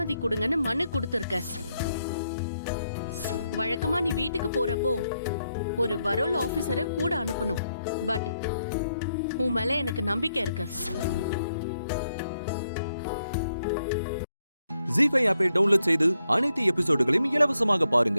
கொடுங்கன்னு மனு கொடுத்துருக்க. வழக்கமா நீ வீட்டுக்கு போறப்போ ஒரு பரோல் ஆபீசரை கூட அனுப்பணும். பட் உன் மேல எனக்கு நம்பிக்கை இருக்கு. ஜீ5 ஆப்பை டவுன்லோட் செய்து அனைத்து எபிசோடுகளையும் இலவசமாக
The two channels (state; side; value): inverted; both; correlation -0.79